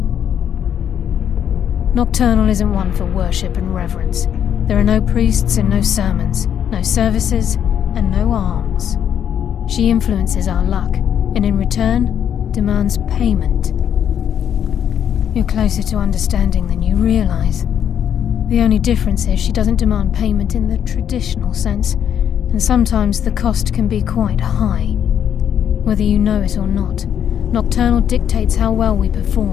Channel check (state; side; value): quieter; right; 9.1 dB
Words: Nocturnal isn't one for worship and reverence. There are no priests and no sermons, no services and no alms. She influences our luck, and in return, demands payment. You're closer to understanding than you realize. The only difference is she doesn't demand payment in the traditional sense, and sometimes the cost can be quite high. Whether you know it or not, Nocturnal dictates how well we